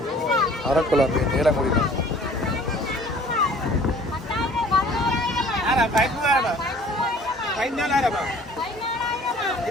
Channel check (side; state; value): both; normal; correlation 0.51